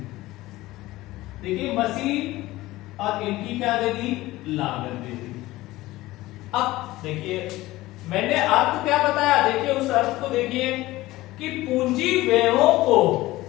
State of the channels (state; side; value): quieter; right; 17.9 dB